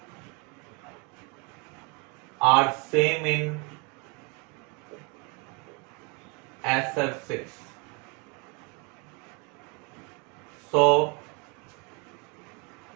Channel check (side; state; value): left; quieter; 31.8 dB